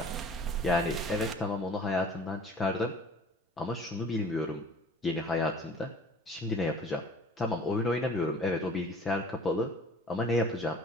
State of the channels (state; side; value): normal; both; correlation 0.48